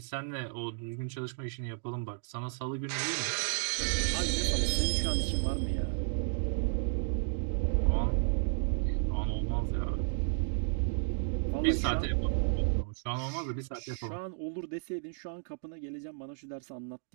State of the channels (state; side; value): silent; left; digital silence